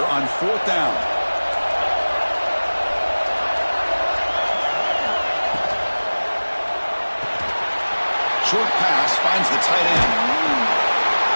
on 4th down. Short pass finds the tight end.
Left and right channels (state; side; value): inverted; both; correlation -1.00